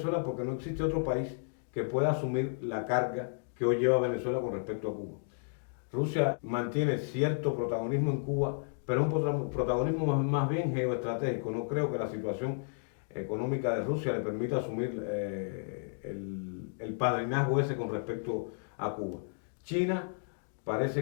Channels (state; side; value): silent; right; digital silence